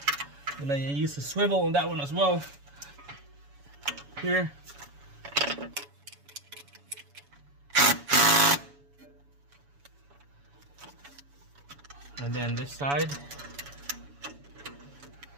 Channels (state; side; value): late; left; 7.1 ms